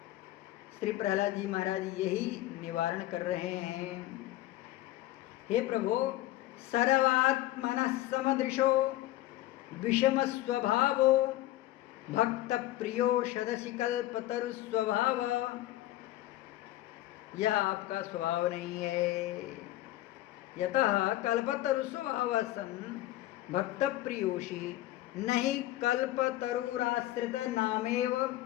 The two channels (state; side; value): quieter; right; 15.5 dB